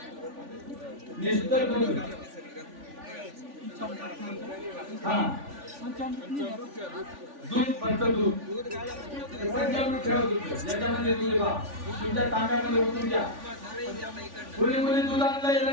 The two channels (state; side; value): late; left; 3.5 ms